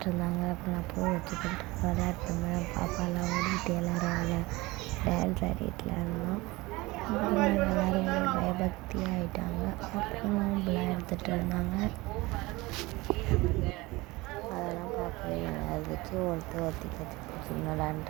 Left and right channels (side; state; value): left; quieter; 21.8 dB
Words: இருந்தாங்க. அப்புறம் நான் பூ வச்சுக்கிட்டு விளையாட்டுருந்தேன். பாப்பாலாம் ஓடிட்டு எல்லோரும் டான்ஸ் ஆடிட்டுலாம் இருந்தோம். அப்புறம் எல்லோரும் பயபக்தியாக ஆகிட்டாங்க. அப்புறம் நோம்புலாம் எடுத்துகிட்டு இருந்தாங்க. அதெல்லாம் பார்க்கவே நல்லா இருந்துச்சு. ஒருத்தி கட்சி